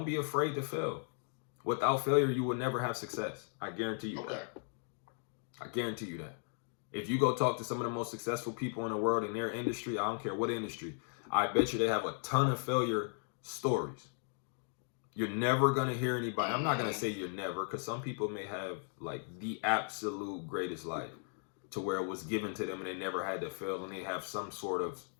be afraid to fail. Without failure, you will never have success. I guarantee you that. Okay. I guarantee you that. If you go talk to some of the most successful people in the world in their industry, I don't care what industry, I bet you they have a ton of failure stories. You're never gonna hear anybody. I'm not gonna Mm-hmm. say you're never, because some people may have like the absolute greatest life to where it was given to them and they never had to fail and they have some sort of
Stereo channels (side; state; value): right; silent; 53 dB below the other